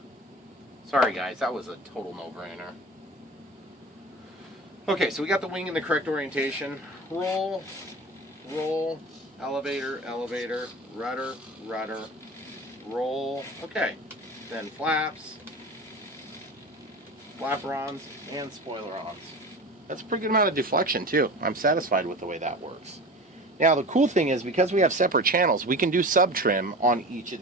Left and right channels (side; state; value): both; normal; correlation 0.34